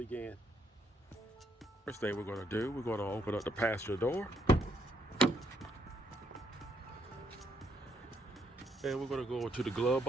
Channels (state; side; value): normal; both; correlation 0.73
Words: First thing we're going to do, we're going to open up the passenger door. And we're going to go to the glove